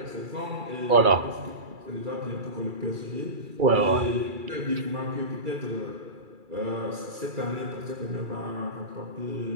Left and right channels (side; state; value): left; late; 2.3 ms